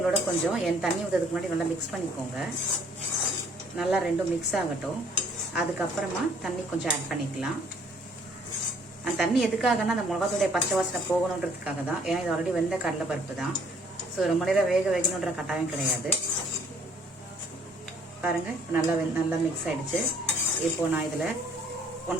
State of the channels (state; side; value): normal; both; correlation 0.61